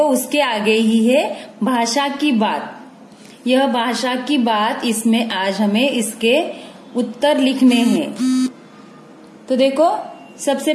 उसके आगे ही है भाषा की बात। यह भाषा की बात, इसमें आज हमें इसके उत्तर लिखने हैं। तो देखो सबसे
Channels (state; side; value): identical; both; correlation 1.00